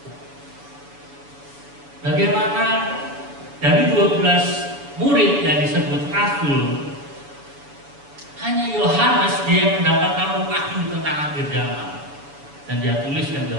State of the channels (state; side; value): late; left; 7.0 ms